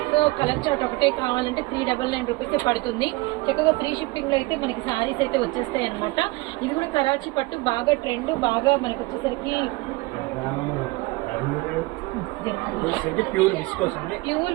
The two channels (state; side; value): quieter; left; 23.0 dB